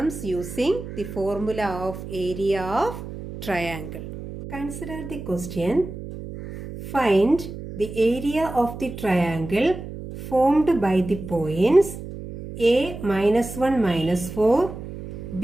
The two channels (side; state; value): right; noise; hum, 10 dB below the sound